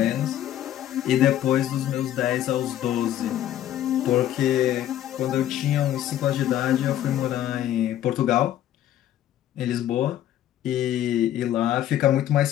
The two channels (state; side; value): quieter; right; 12.0 dB